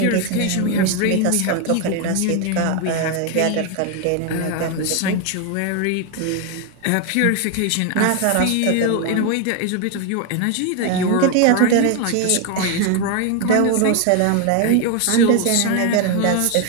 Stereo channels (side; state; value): both; different; correlation 0.01